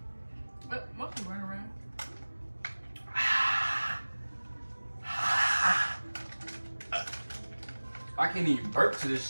But mostly run around. I can't even burp to this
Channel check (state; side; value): inverted; both; correlation -1.00